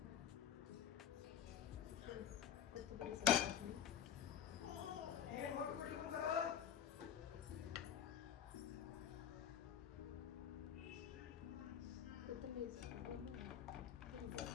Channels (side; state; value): right; quieter; 9.4 dB